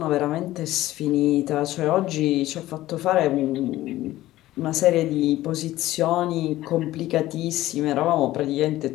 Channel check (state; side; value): quieter; right; 15.7 dB